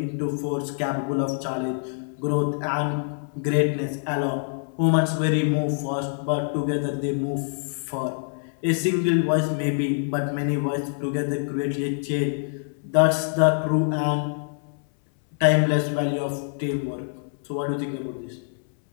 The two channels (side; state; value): right; silent; 62 dB below the other